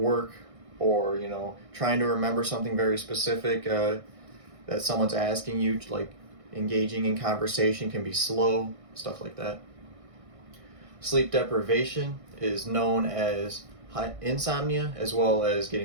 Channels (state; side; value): late; left; 1.6 ms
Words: or, trying to remember something very specific that someone's asking you, like engaging in conversation can be slow, stuff like that. Sleep deprivation is known as insomnia, as well as